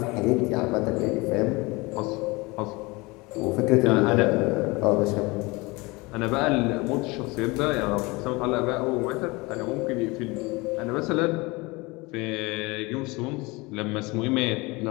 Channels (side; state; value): right; quieter; 24.4 dB